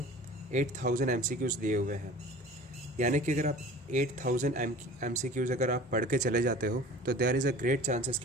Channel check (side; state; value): both; normal; correlation 0.43